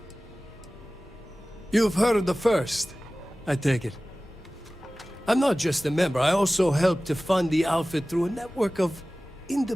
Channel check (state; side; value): normal; both; correlation 0.97